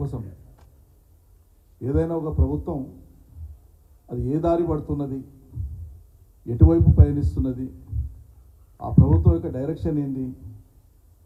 సమయం. ఏదైనా ఒక ప్రభుత్వం అది ఏ దారి పడుతున్నది, ఎటువైపు పయనిస్తున్నది, ఆ ప్రభుత్వం యొక్క డైరెక్షన్ ఏంది,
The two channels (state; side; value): identical; both; correlation 1.00